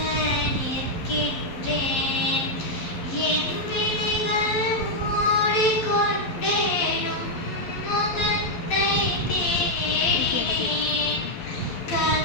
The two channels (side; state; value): right; late; 11 ms